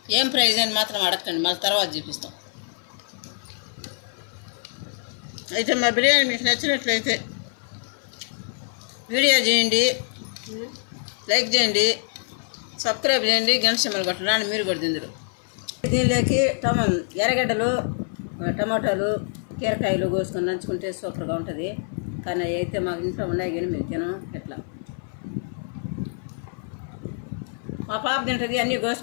ఏం ప్రైజ్ అని మాత్రం అడగండి, మళ్ళీ తర్వాత చూపిస్తాం. అయితే మా బిర్యానీ మీకు నచ్చినట్లయితే వీడియో చేయండి, లైక్ చేయండి, సబ్స్క్రైబ్ చేయండి, గంట సింబల్ కొట్టండి. మీరు కూడా తిందరు. దీనిలోకి ఎర్రగడ్డలు, టమాటాలు, కీరకాయలు కోసుకొని నంచుకుంటే సూపర్గా ఉంటుంది. కానీ అయితే మాకు ఇంట్లో ఉన్నాయి కానీ మేము తినం. ఎట్లా మా పాప తింటుంది అన్నీ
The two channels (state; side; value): silent; right; 57 dB below the other